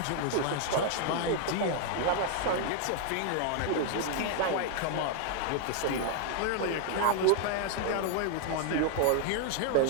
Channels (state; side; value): different; both; correlation 0.00